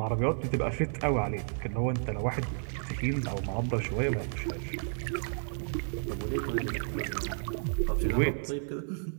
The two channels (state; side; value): silent; left; digital silence